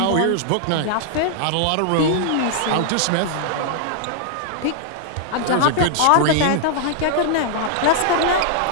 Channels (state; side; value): different; both; correlation 0.00